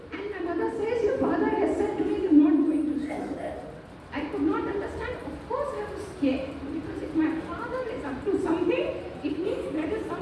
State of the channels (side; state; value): both; identical; correlation 1.00